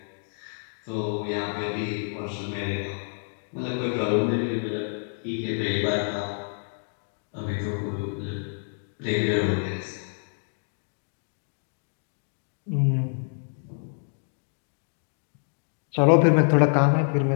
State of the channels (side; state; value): right; silent; digital silence